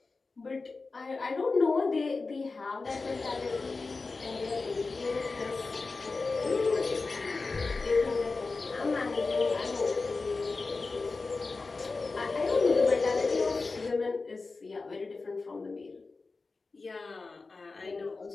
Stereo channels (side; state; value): right; quieter; 3.9 dB